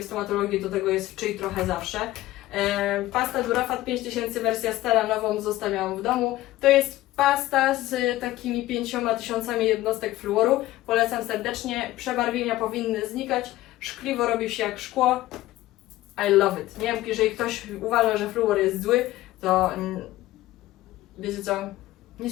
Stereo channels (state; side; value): quieter; right; 16.2 dB